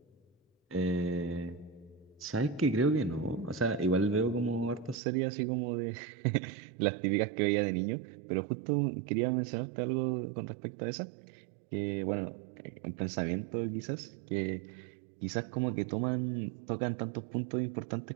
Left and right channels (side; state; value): left; drops out; at 5.0 s